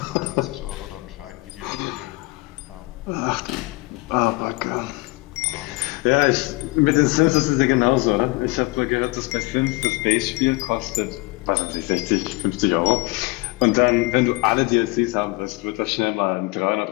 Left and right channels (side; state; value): right; quieter; 23.5 dB